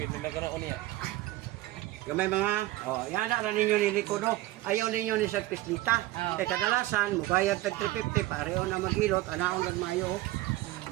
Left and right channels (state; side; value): quieter; left; 17.3 dB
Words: nagkaroon niya. Gamay mga, oh, yan na ninyo ni Rico, no? Ayaw ninyo ni Sir Pislita. Oh. Kaya kadalasan, mugayad tag 350, pareho na maghilot, anaon ng mayo.